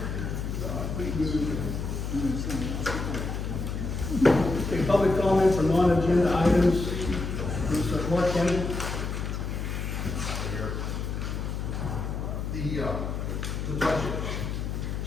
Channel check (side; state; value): left; noise; hum, 3 dB below the sound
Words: Okay, public comment for non-agenda items. Mr. Mark Kennedy. The budget.